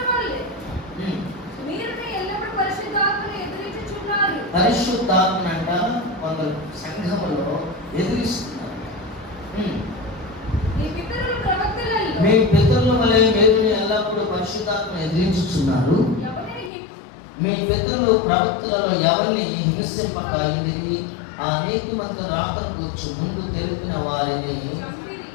పరిశుద్ధాత్మ అంట కొందరు సంఘములో ఎదిరిస్తున్నారు. మీ పితరుల వలె మీరు ఎల్లప్పుడూ పరిశుద్ధాత్మ ఎదిరించుచున్నారు. మీ పితరులు ప్రవక్తలలో ఎవరిని హింసింపక ఎదిరి ఆ నీతిమంతుల రాకకు వచ్చి ముందు తెలిపిన వారిని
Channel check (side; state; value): right; drops out; at 16.7 s